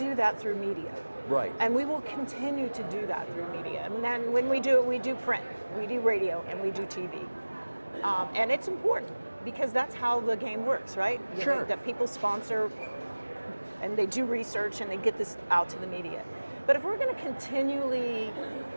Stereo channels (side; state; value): both; inverted; correlation -1.00